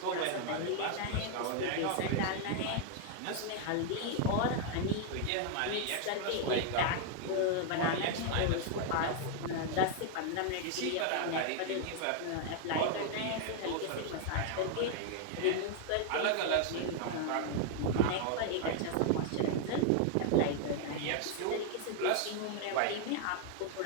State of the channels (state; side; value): different; both; correlation 0.00